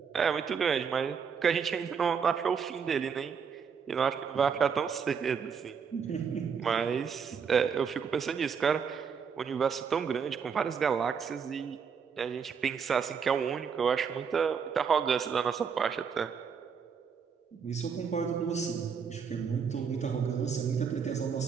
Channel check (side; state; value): left; quieter; 6.5 dB